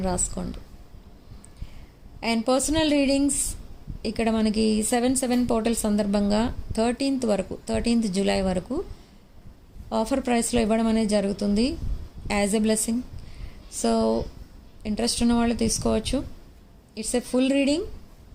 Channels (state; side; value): identical; both; correlation 1.00